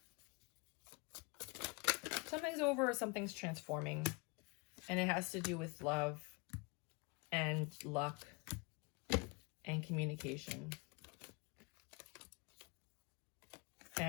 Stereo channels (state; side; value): quieter; right; 30.1 dB